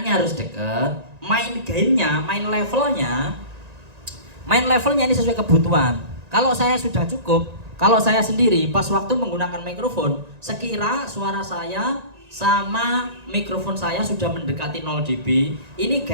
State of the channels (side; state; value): left; late; 1.9 ms